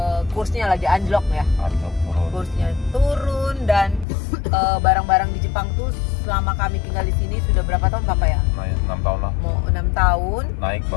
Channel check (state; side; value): drops out; right; at 4.0 s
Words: kursnya lagi anjlok ya, kursnya turun dan barang-barang di Jepang tuh selama kami tinggal di sini sudah berapa tahun Papa ya? 6 tahun lah. Mau 6 tahun. Naik